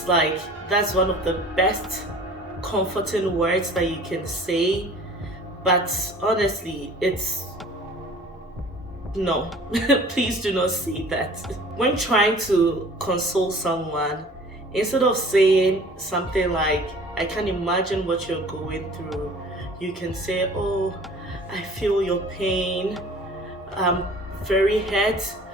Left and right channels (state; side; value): normal; both; correlation 0.47